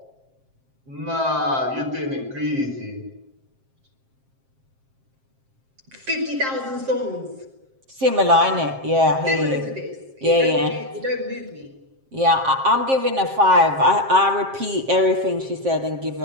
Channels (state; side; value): late; left; 7.5 ms